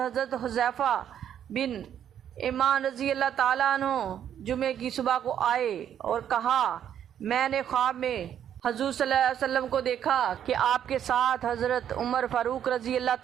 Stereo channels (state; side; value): quieter; left; 9.7 dB